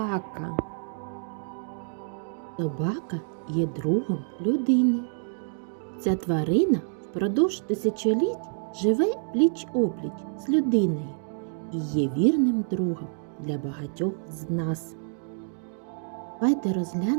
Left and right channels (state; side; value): silent; left; digital silence